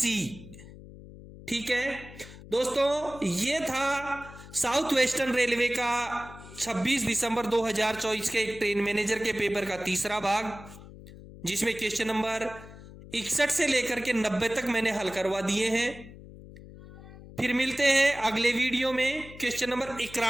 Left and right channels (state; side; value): noise; left; hum, 17 dB below the sound